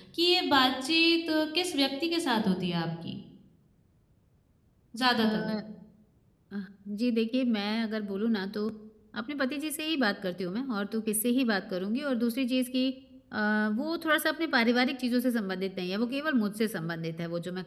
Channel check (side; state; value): both; identical; correlation 1.00